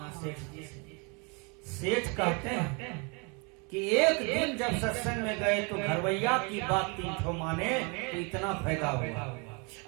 सेठ जी से। सेठ कहते हैं, कि एक दिन जब सत्संग में गए तो घरवैया की बात 3 ठो माने तो इतना फायदा हुआ।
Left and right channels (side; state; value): left; quieter; 32.5 dB